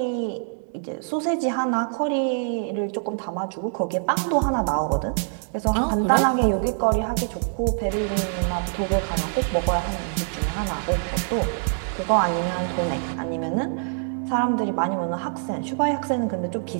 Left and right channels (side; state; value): left; silent; 62 dB below the other